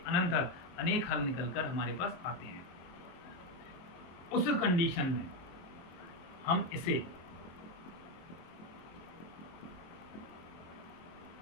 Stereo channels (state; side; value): late; right; 23 ms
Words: अनंत हल, अनेक हल निकलकर हमारे पास आते हैं। उस कंडीशन में हम इसे